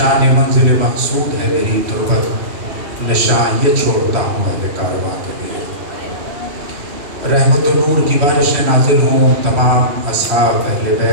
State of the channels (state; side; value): late; left; 3.1 ms